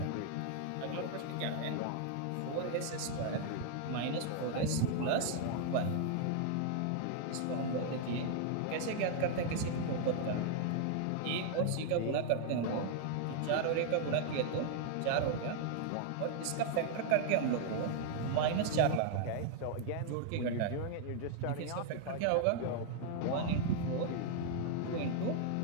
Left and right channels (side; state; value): both; different; correlation 0.00